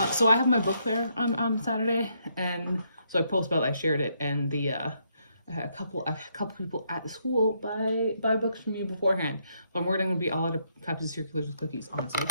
So I have my book fair on Saturday, and so I post about it, I shared it, and the I had a couple people at the school buy books from me beforehand. So I'm worried I'm gonna be all out of copies of Circulars with Cookies, honestly.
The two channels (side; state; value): both; inverted; correlation -0.75